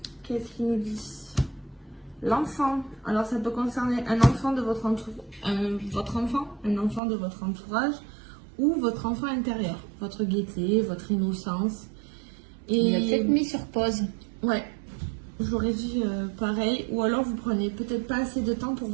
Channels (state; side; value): drops out; left; at 7.0 s